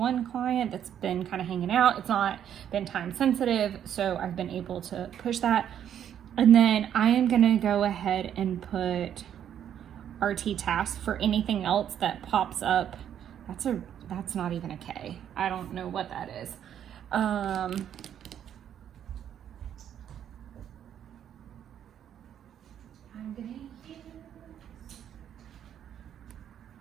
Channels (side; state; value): left; quieter; 9.7 dB